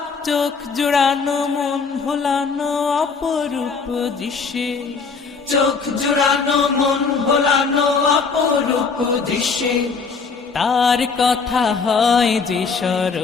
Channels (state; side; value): quieter; right; 5.0 dB